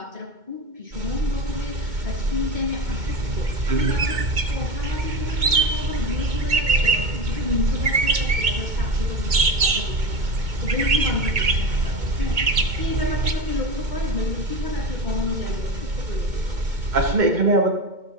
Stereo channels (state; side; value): late; left; 2.2 ms